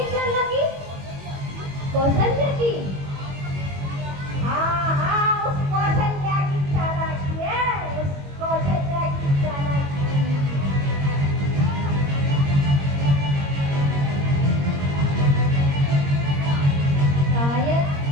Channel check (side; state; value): left; late; 21 ms